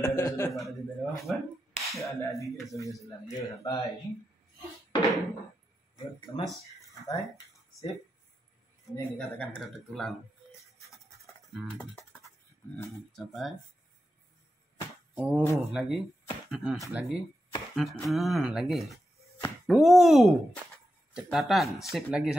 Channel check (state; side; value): normal; both; correlation 0.89